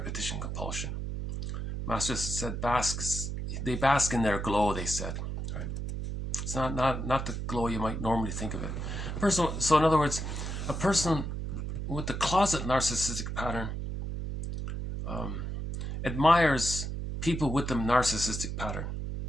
compulsion. Masters said they bask in their glow, they said. Right? It's not the glow you might normally think of it. So in other words, a person with the closet narcissistic pattern admires people with the narcissistic pattern,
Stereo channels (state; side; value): noise; right; hum, 4 dB below the sound